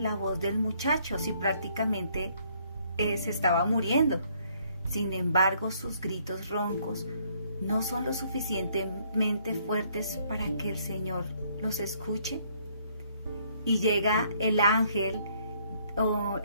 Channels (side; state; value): both; inverted; correlation -0.67